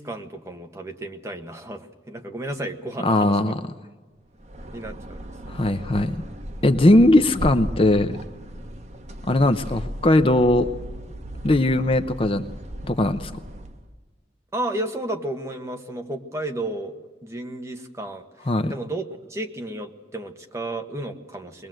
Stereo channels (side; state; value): both; normal; correlation 0.71